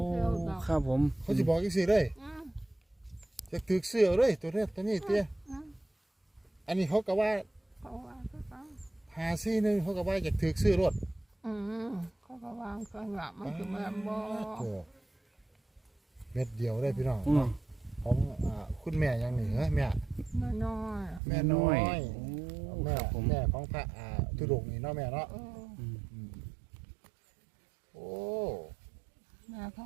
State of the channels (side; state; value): left; drops out; at 21.2 s